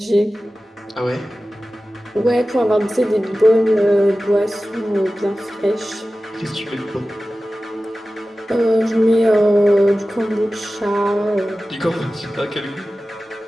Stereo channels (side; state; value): both; normal; correlation 0.95